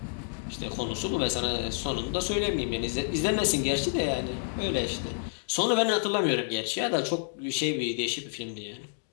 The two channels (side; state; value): right; silent; digital silence